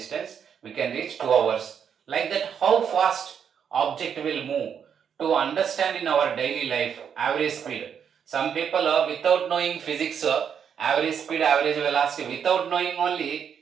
We can reach 2 hours. Like that, how fast object will move to understand in our daily life average speed. Some people without knowing physics, average speed, average velocity, without knowing only,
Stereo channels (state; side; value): quieter; left; 7.7 dB